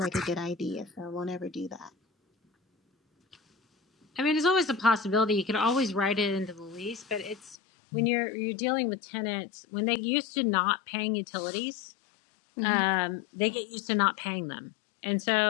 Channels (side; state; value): right; drops out; at 7.6 s